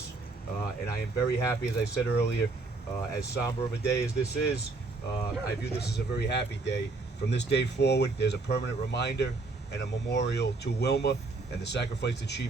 and I am very happy, as I said earlier, as somber of a day as this is, I view this as a very happy day. From this day forward, there's a permanent reminder and a memorial to Wilma and the sacrifice that she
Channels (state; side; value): quieter; left; 3.6 dB